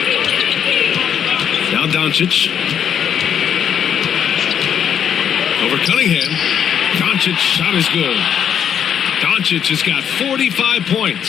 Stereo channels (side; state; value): right; quieter; 8.7 dB